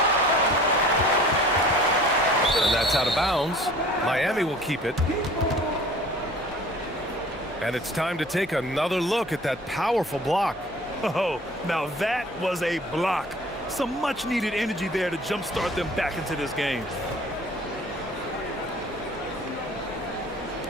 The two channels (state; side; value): normal; both; correlation 0.48